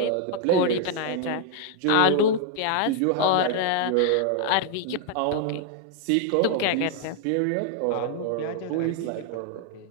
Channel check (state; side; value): different; both; correlation 0.00